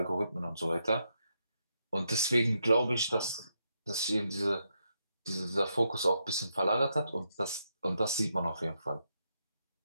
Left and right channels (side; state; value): both; inverted; correlation -0.81